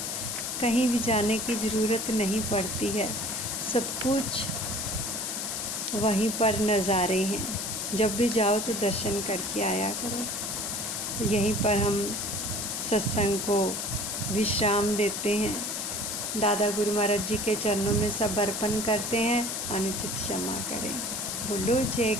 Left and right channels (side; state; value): left; noise; hiss, 3 dB below the sound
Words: कहीं भी जाने की ज़रूरत नहीं पड़ती है, सब कुछ वहीं पर नज़ारे हैं। जब भी जाओ तो दर्शन करके आया करो। तो यहीं पर हम सत्संग को विश्राम देते हैं। दादा गुरु महाराज जी के चरणों में सब अर्पण करते हैं। अनुचित क्षमा करें। बोलो